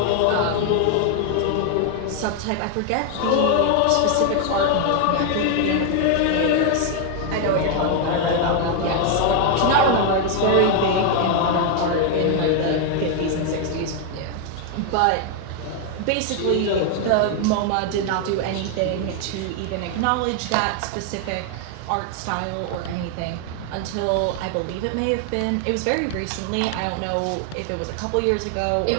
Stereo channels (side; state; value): both; different; correlation 0.00